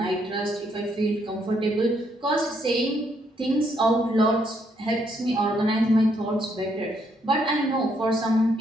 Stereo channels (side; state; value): both; normal; correlation 0.73